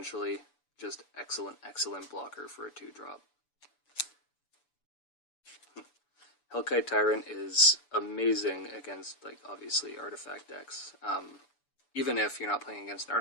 Just excellent, excellent blocker for a 2-drop. Hellkite Tyrant is amazing against, like, obviously, artifact decks. Even if you're not playing against an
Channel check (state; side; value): late; right; 7.0 ms